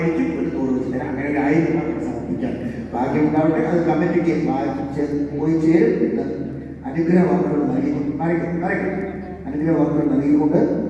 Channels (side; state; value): both; identical; correlation 1.00